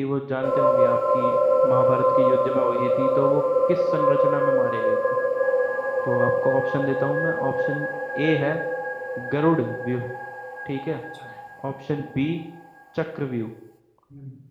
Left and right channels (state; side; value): identical; both; correlation 1.00